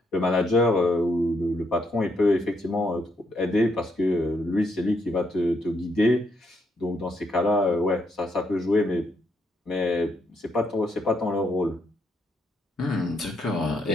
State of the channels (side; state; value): both; normal; correlation 0.76